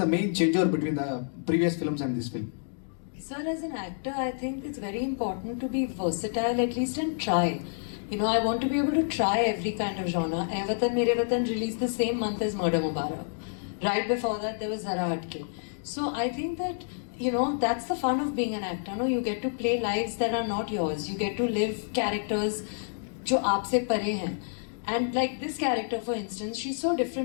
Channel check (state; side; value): silent; right; digital silence